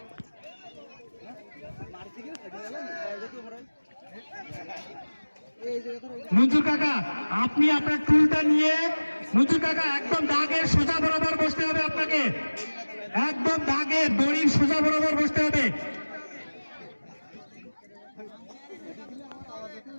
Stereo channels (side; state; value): both; inverted; correlation -1.00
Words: মঞ্জুর কাকা, আপনি আপনার টুলটা নিয়ে মঞ্জুর কাকা একদম দাগের সোজা বরাবর বসতে হবে, আপনাকে একদম দাগের দড়ির সোজা বরাবর বসতে হবে।